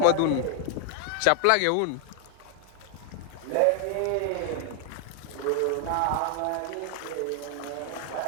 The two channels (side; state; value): both; different; correlation 0.00